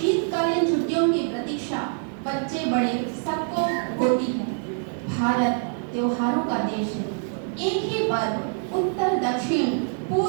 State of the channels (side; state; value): left; silent; 62 dB below the other